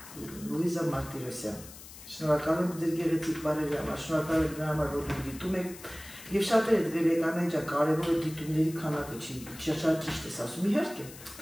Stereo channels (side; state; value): left; noise; hiss, 16 dB below the sound